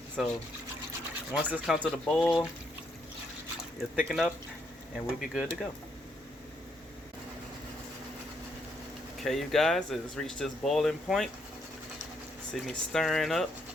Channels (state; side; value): normal; both; correlation 0.74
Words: So once this comes to the boil, it'll thicken up and we'll be good to go. Okay, you guys, it's reached this boiling point. See me stirring up,